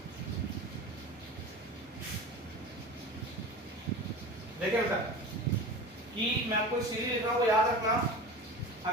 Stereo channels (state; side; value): normal; both; correlation 0.33